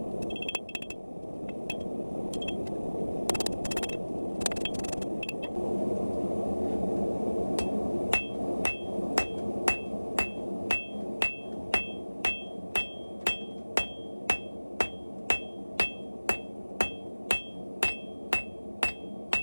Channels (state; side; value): inverted; both; correlation -1.00